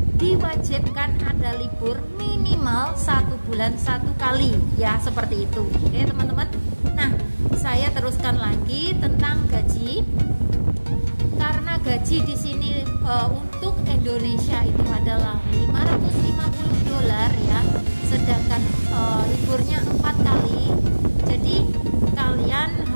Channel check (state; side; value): inverted; both; correlation -1.00